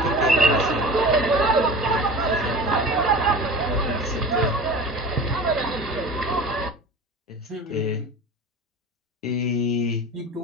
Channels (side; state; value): both; normal; correlation 0.36